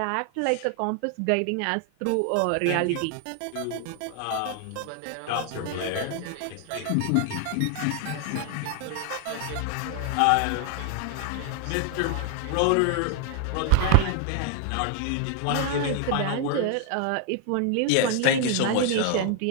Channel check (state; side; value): different; both; correlation 0.01